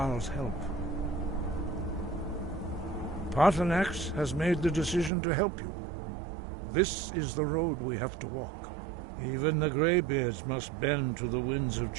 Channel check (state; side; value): drops out; left; at 5.1 s